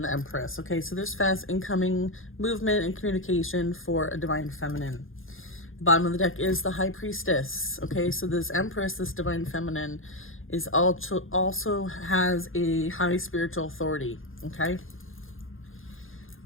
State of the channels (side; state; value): right; late; 0.59 ms